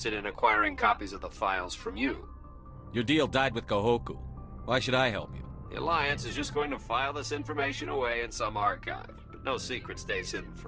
in acquiring copies of the files from you. Your deal died with Kahoku. Why should I help you? The Alliance is just going to file this information away in some archive, but no secret stays hidden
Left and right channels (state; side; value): identical; both; correlation 1.00